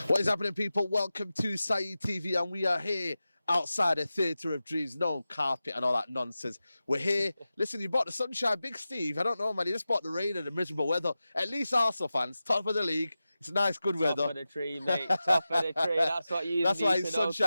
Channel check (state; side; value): inverted; both; correlation -0.94